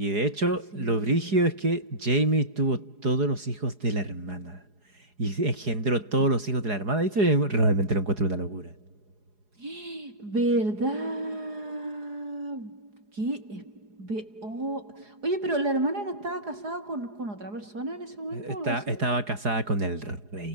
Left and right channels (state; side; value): late; left; 4.8 ms